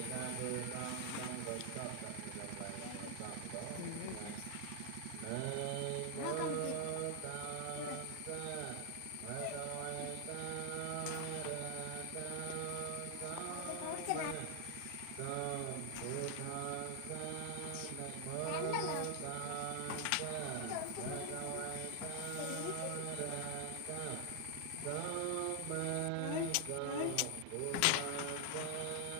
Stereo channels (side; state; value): both; different; correlation 0.00